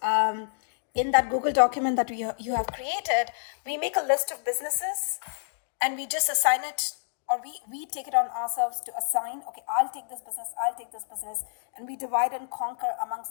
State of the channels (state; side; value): silent; right; digital silence